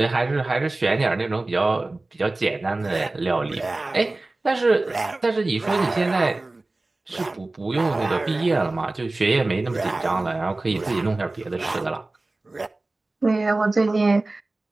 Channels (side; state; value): left; quieter; 3.0 dB